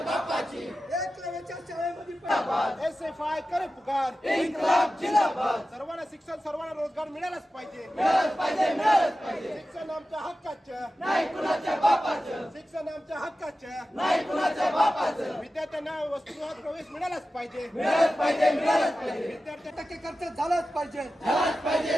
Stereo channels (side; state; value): both; normal; correlation 0.94